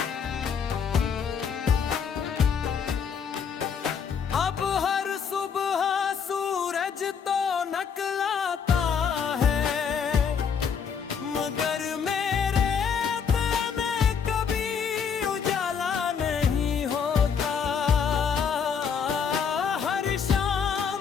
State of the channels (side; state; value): right; quieter; 6.8 dB